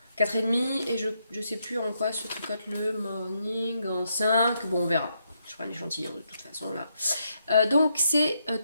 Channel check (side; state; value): both; inverted; correlation -0.79